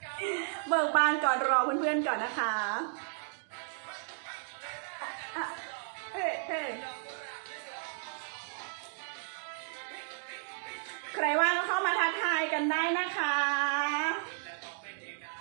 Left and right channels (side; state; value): left; silent; digital silence